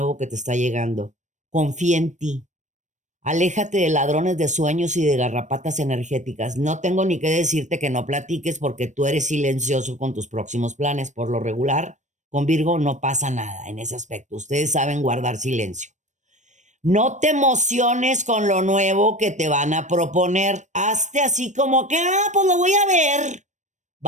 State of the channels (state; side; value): late; left; 0.35 ms